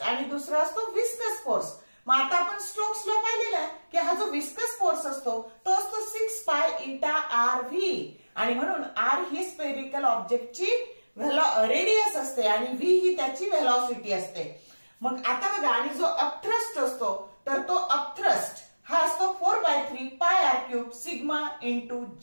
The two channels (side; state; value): both; inverted; correlation -1.00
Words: आणि दुसरा असतो विस्कस फोर्स. मग आता आपण स्ट्रोक्स ला पाहिलेला आहे की हा जो विस्कस फोर्स असतो तो असतो 6 पाय इटा आर व्ही आणि म्हणून आर ही स्पेरिकल ऑब्जेक्टची रेडियस असते आणि व्ही ही त्याची व्हेलॉसिटी असते. मग आता बघा आणि जो अपथ्रस्ट असतो तर तो अपथ्रस्ट हा असतो 4/3 pi r cube sigma into